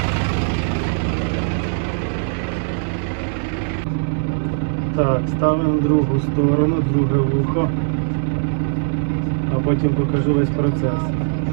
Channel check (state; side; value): silent; left; digital silence